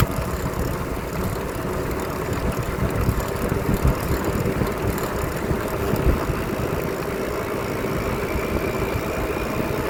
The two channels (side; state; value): both; identical; correlation 1.00